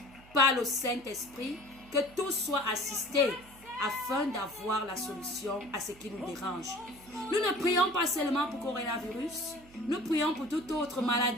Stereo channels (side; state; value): right; noise; hum, 23 dB below the sound